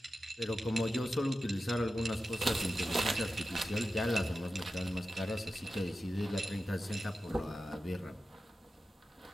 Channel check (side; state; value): both; normal; correlation 0.93